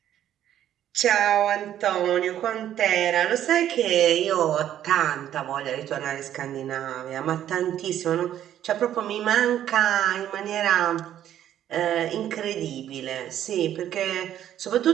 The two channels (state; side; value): quieter; left; 11.2 dB